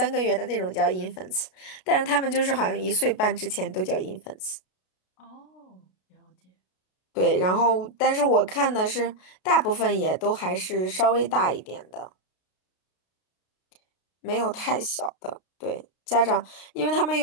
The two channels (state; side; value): late; right; 33 ms